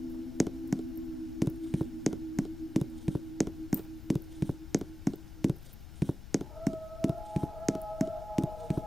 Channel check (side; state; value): left; noise; rumble, 12 dB below the sound